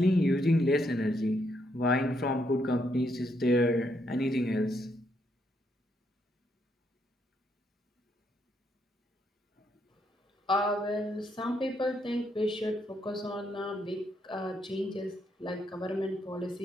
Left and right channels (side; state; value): both; normal; correlation 0.76